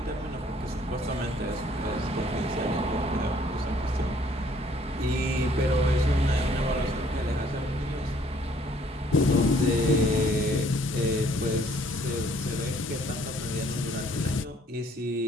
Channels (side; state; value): both; normal; correlation 0.61